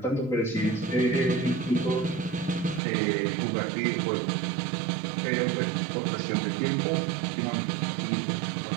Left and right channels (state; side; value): drops out; left; at 2.8 s